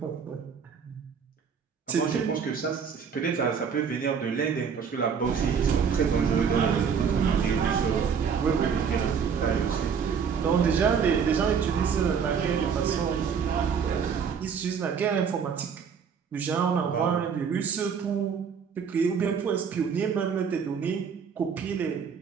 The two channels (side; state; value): left; quieter; 6.7 dB